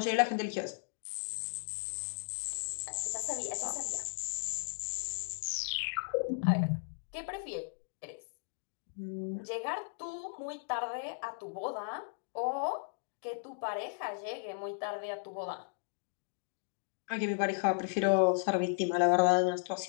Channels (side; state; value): right; silent; digital silence